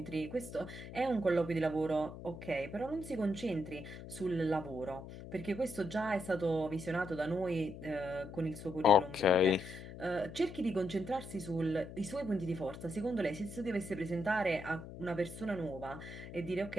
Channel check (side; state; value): left; noise; hum, 12 dB below the sound